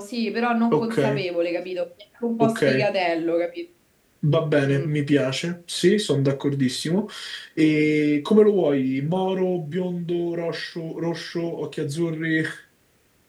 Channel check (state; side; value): identical; both; correlation 1.00